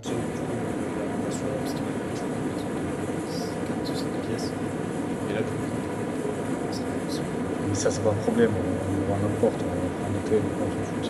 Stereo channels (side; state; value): both; identical; correlation 1.00